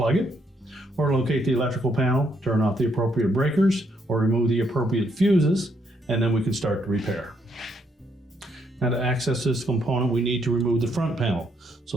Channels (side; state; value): both; normal; correlation 0.73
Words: it, or locate the electrical panel, turn off the appropriate breakers, or remove the appropriate fuses, and then we can start the repair. Now to access this component, we need to remove the front panel.